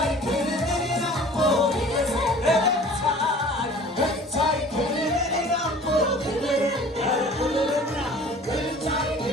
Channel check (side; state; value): both; normal; correlation 0.46